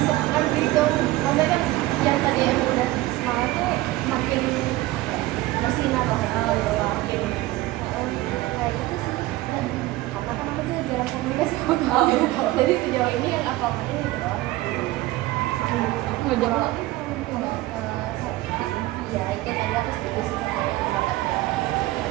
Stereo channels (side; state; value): left; quieter; 17.8 dB